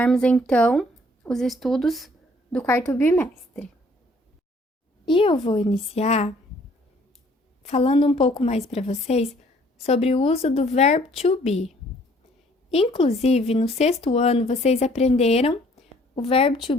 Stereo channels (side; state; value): both; normal; correlation 0.60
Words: então os estudos do quarto bimestre. E eu vou iniciar falando um pouco mais para vocês sobre o uso do verbo to be. Inclusive, no sexto ano, vocês aprenderam o verbo to